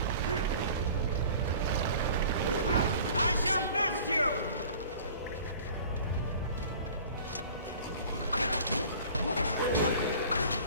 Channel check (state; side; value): inverted; both; correlation -0.46